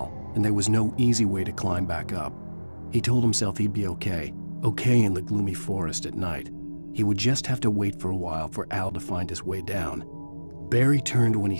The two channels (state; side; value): inverted; both; correlation -1.00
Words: and there was no easy way to climb back up. He told himself he'd be okay in the gloomy forest at night. He would just have to wait for a while for Al to find his way down. Barry turned when he